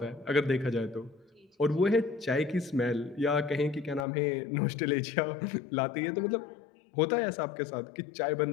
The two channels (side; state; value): right; drops out; at 4.0 s